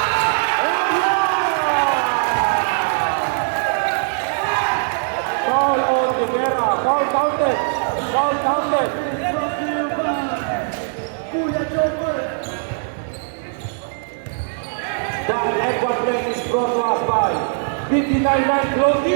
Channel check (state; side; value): silent; left; digital silence